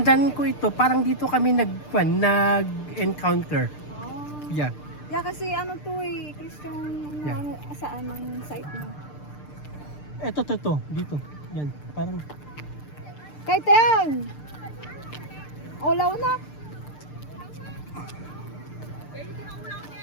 ko ito, parang dito kami nag-encounter. Yeah. Yeah, kasi ano to eh, Christian, Yeah. ano, saan ang site mo? Ito, dito. Yan, parang... Kahit yan! Ulaw na!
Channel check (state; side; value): late; right; 6.7 ms